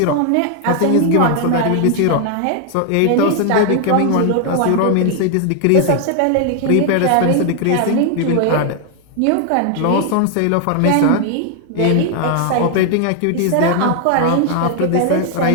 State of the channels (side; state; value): both; different; correlation 0.00